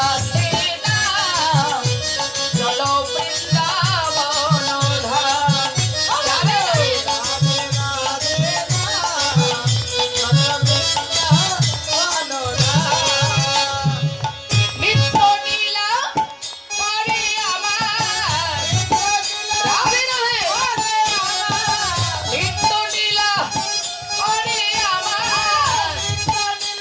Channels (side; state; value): both; identical; correlation 1.00